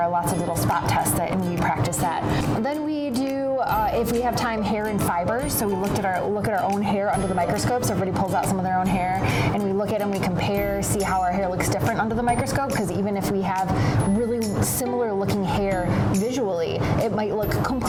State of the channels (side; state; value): both; identical; correlation 1.00